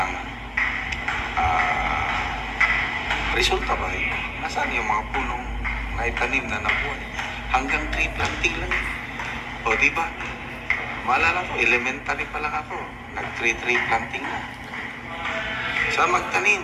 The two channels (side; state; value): both; identical; correlation 1.00